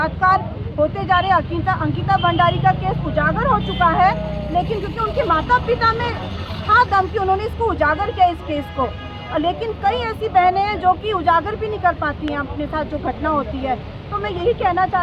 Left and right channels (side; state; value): both; identical; correlation 1.00